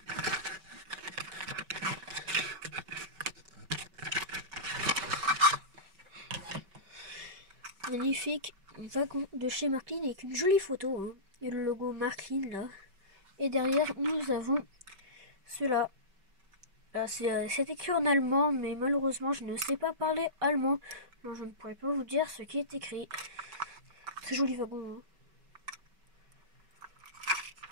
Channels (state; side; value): late; left; 5.2 ms